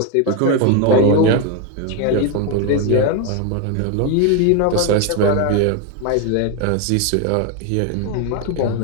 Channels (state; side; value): different; both; correlation 0.01